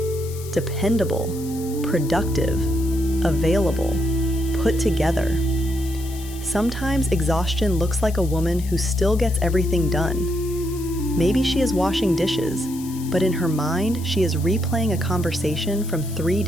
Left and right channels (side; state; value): left; noise; hiss, 16 dB below the sound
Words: dependable, productive, available, put together. Sometimes exhaustion looks like a woman who still gets everything done. Maybe she is washing dishes, but in her mind, she is replaying a conversation from 3